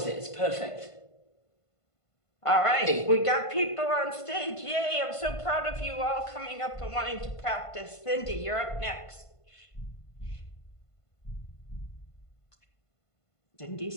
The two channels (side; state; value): right; late; 1.5 ms